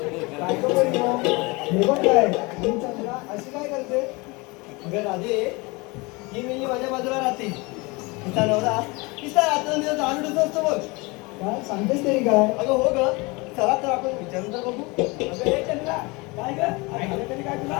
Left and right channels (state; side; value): quieter; right; 25.8 dB